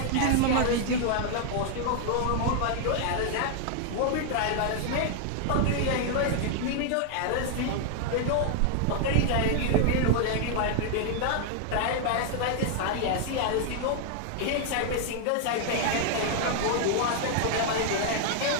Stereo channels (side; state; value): both; different; correlation 0.00